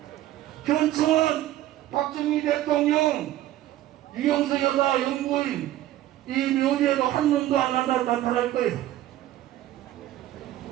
현충은 박정희 대통령, 유영석 여사 영부인 이 묘지에도 한 놈도 안 나타날 거예요.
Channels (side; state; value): left; quieter; 14.1 dB